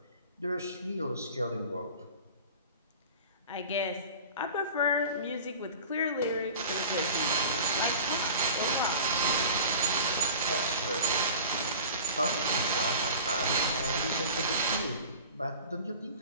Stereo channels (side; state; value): both; inverted; correlation -0.39